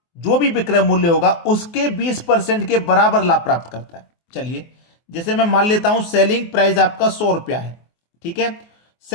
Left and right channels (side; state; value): right; late; 24 ms